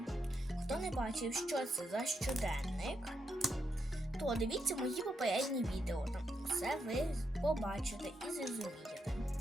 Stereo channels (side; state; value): both; normal; correlation 0.82